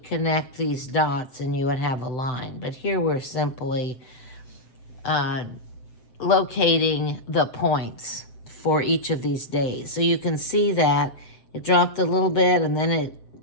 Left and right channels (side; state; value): right; late; 7.9 ms